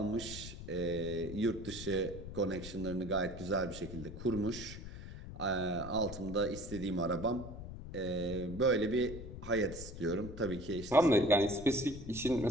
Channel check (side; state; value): left; noise; rumble, 10 dB below the sound